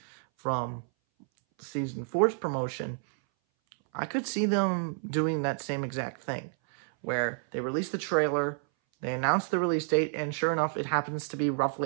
from Season 4's promotion, I could see them doing that same exact thing, where they release the trailer, they announce the release date, and sure enough, it happens to be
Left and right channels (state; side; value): silent; left; 58 dB below the other